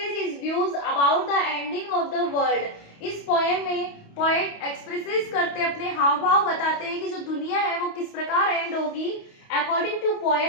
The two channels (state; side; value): late; right; 28 ms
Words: his views about the ending of the world. इस पोएम में पोएट एक्सप्रेसेस करते अपने हाव भाव बताते हैं कि जो दुनिया है वो किस प्रकार एंड होगी। According to